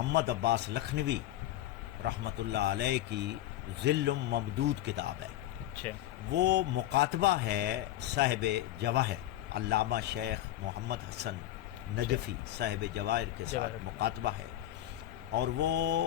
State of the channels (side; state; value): right; quieter; 13.9 dB